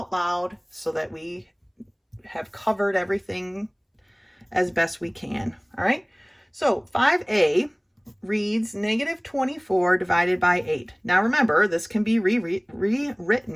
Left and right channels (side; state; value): both; identical; correlation 1.00